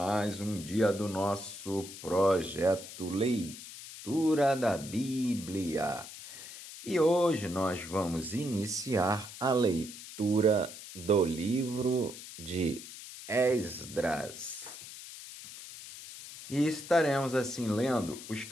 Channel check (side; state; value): left; noise; hiss, 13 dB below the sound